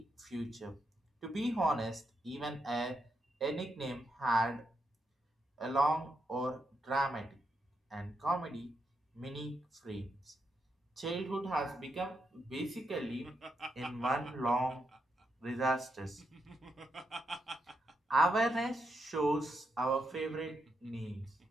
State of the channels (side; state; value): both; normal; correlation 0.82